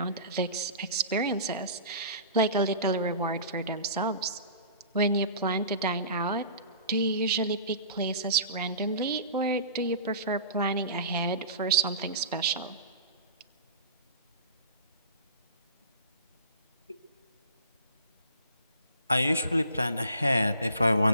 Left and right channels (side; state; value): both; inverted; correlation -0.40